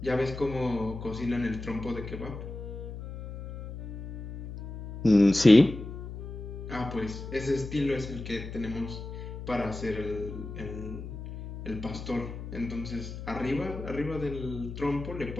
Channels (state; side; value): noise; left; hum, 9 dB below the sound